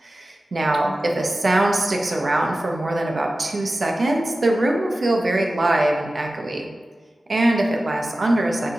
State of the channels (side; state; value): both; normal; correlation 0.95